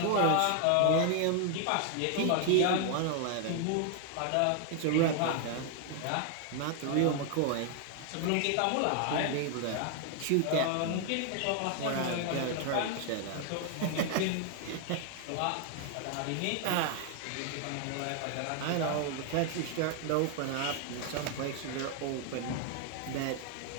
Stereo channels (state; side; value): different; both; correlation 0.00